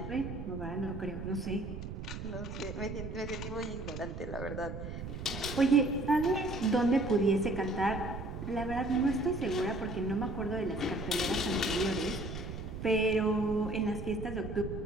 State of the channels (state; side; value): noise; right; rumble, 7 dB below the sound